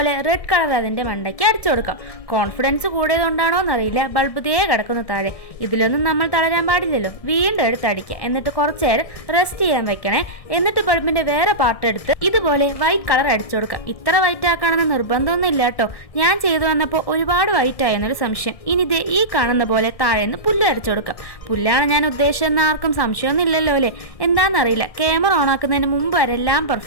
റെഡ് കളർ അതിന്റെ മണ്ടയ്ക്ക് അടിച്ചു കൊടുക്കാം. കോൺഫിഡൻസ് കൂടിയതുകൊണ്ടാണോ എന്നറിയില്ല, ബൾബ് തേ കിടക്കുന്ന താഴെ. ഇതിലൊന്നും നമ്മൾ തളരാൻ പാടില്ലല്ലോ. വീണ്ടും എടുത്തടിക്കുക, എന്നിട്ട് കുറച്ചു നേരം റെസ്റ്റ് ചെയ്യാൻ വെക്കണേ. എന്നിട്ട് ബൾബിന്റെ വേറെ പാർട്ട് എടുത്ത് ഇതുപോലെ വൈറ്റ് കളർ അടിച്ചു കൊടുക്കാം. ഇത്ര വൈറ്റ് ആക്കണമെന്ന് നിർബന്ധമൊന്നും ഇല്ല കേട്ടോ. ഞാൻ ചെയ്തു വന്നപ്പോൾ ഒരുപാട് വൈറ്റ് ആയെന്നൊരു സംശയം. ഇനി ഇതേ ഈ കാണുന്ന പോലെ താഴേന്ന് പുല്ല് അടിച്ചു കൊടുക്കാം. പുല്ലാണ് ഞാൻ ഉദ്ദേശിച്ചെന്ന് ആർക്കും സംശയമൊന്നും ഇല്ലല്ലോ അല്ലേ? എന്താണെന്നറിയില്ല, ക്യാമറ ഓൺ ആക്കുന്നതിന് മുമ്പ് വരെ എല്ലാം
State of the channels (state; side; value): late; right; 1.7 ms